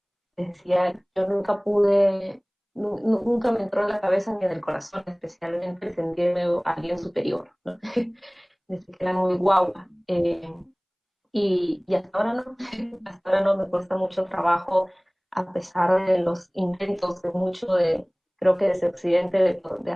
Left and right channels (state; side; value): identical; both; correlation 1.00